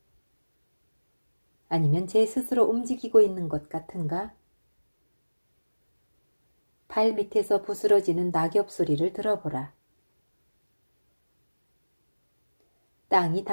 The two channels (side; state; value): both; inverted; correlation -1.00